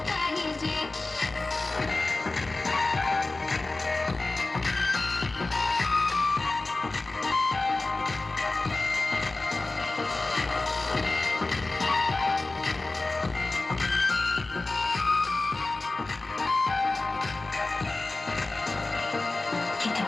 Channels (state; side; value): quieter; right; 3.2 dB